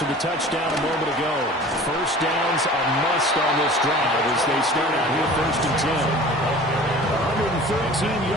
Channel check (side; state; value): both; normal; correlation 0.43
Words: the touchdown a moment ago. First down's a must on this drive as they start out here first and 10. 113